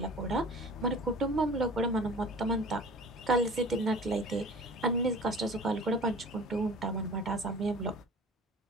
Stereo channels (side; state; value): both; normal; correlation 0.43